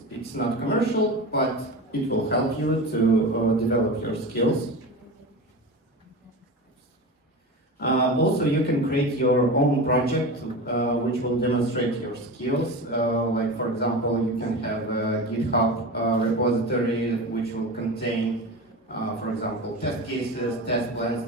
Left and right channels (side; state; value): both; normal; correlation 0.27